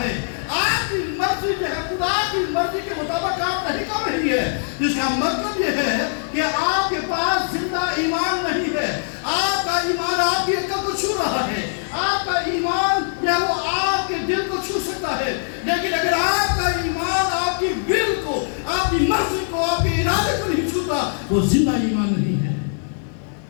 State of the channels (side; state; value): right; silent; digital silence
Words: آپ کی مرضی جو ہے خدا کی مرضی کے مطابق کام نہیں کر رہی ہے, جس کا مطلب یہ ہے کہ آپ کے پاس زندہ ایمان نہیں ہے. آپ کا ایمان آپ کی عقل کو چھو رہا ہے, آپ کا ایمان جو وہ آپ کے دل کو چھو سکتا ہے, لیکن اگر آپ کا ایمان آپ کی ول کو, آپ کی مرضی کو, آپ کے ارادے کو نہیں چھوتا, وہ زندہ ایمان نہیں ہے.